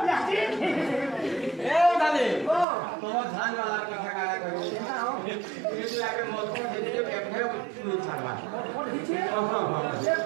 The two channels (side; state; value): left; drops out; at 2.7 s